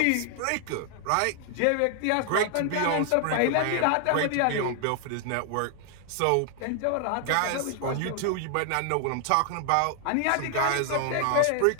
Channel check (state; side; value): different; both; correlation 0.00